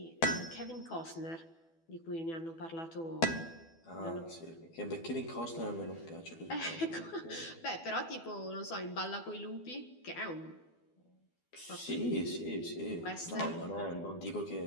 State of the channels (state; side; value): late; right; 12 ms